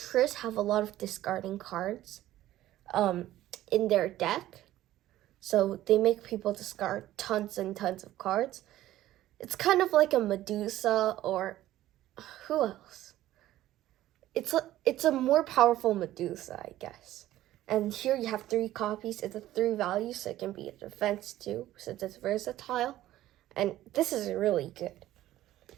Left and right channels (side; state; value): left; quieter; 14.4 dB